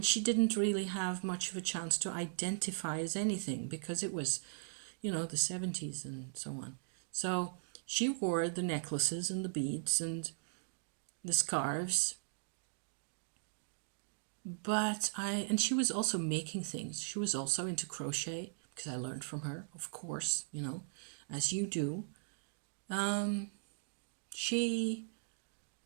she didn't really have much of a chance to identify as anything because it was, the 70s and so on. So she wore the necklaces and the beads and the scarves. And she was also making things. She was also into crochet because I learned from her, of course, as you do. It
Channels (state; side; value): silent; left; digital silence